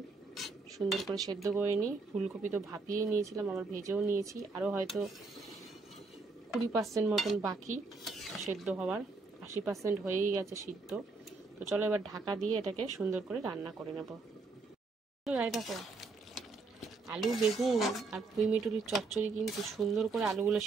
সুন্দর করে সেদ্ধ করে নিই। ফুলকপি তো ভাপিয়ে নিয়েছিলাম, আবার ভেজেও নিয়েছি, আরও হয়তো 20% মতন বাকি সেদ্ধ হওয়ার, 80% হয়েই গেছে সিদ্ধ। তো চলো এবার ঢাকা দিয়ে এটাকে সুন্দর করে রান্না করে নেব। দেখো আলু বেগুন আর পুঁই মিটুলির চচ্চড়ি কিন্তু সুন্দর করে আলুগুলো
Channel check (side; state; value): left; quieter; 3.9 dB